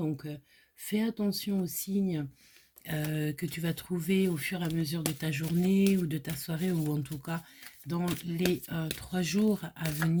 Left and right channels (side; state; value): both; identical; correlation 1.00